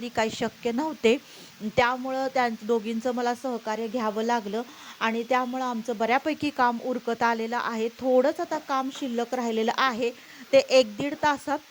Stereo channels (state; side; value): identical; both; correlation 1.00